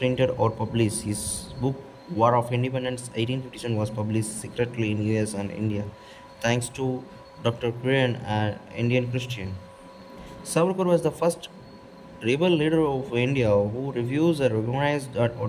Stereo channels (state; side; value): identical; both; correlation 1.00